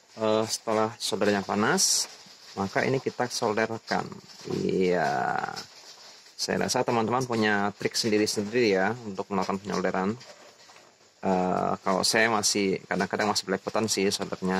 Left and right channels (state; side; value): identical; both; correlation 1.00